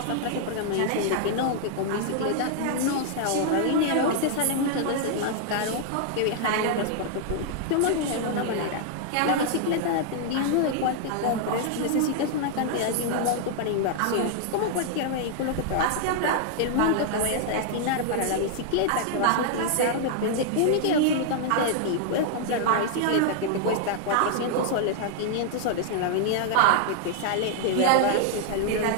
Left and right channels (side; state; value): both; different; correlation -0.01